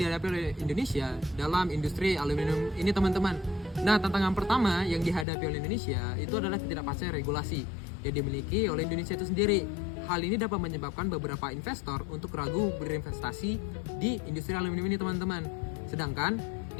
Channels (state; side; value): drops out; right; at 5.2 s